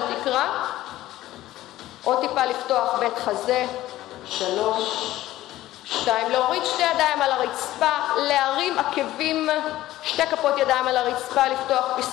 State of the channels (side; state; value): right; quieter; 15.2 dB